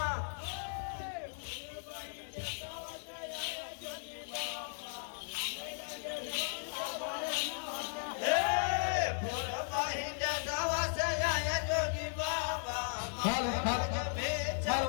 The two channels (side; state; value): right; silent; 53 dB below the other